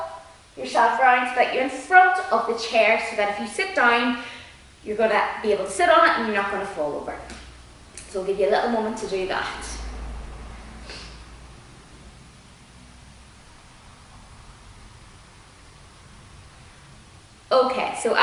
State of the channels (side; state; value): both; identical; correlation 1.00